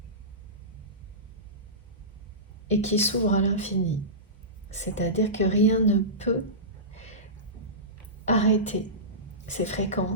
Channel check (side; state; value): both; normal; correlation -0.20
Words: Et qui s'ouvre à l'infini. C'est-à-dire que rien ne peut arrêter ces